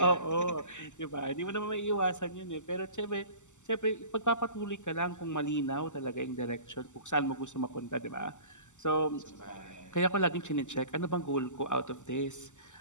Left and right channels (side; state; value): right; late; 0.84 ms